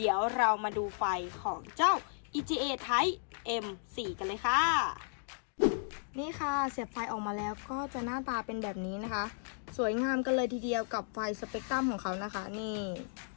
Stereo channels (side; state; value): right; silent; digital silence